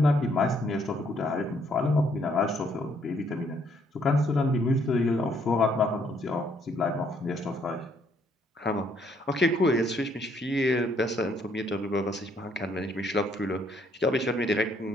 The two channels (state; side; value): normal; both; correlation 0.68